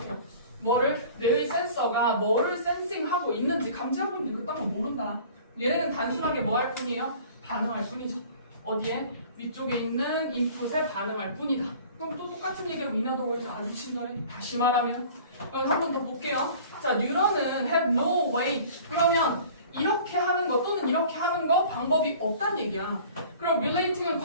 뭐를? 뇌의 센서가 뭐를 센싱하고 있는지 감지하고 있는지 그딴 건 모른다. 얘네는 단순하게 뭐 할 뿐이에요? 반응할 뿐이죠. 어디에? 위쪽에 있는 인풋에 반응할 뿐이다. 그럼 또 똑같은 얘기하고 인하도 보이지 아주 친절해. 다시 말하면 그럼 한 번 더 볼게요. 자, 뉴런은 have no way. 그러면 이렇게 하는 거 또는 이렇게 하는 거 방법이 없다는 얘기야. 그럼 relating은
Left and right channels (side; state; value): both; inverted; correlation -0.46